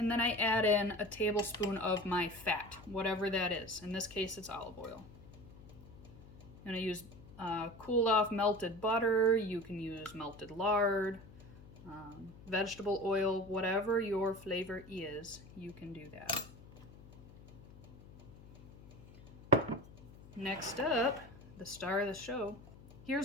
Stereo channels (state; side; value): noise; left; hum, 19 dB below the sound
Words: then I add in a tablespoon of my fat, whatever that is. In this case, it's olive oil. I'm going to use cooled off melted butter. You can use melted lard, vegetable oil, whatever your flavor is, you can do that. Next up, the star of the show.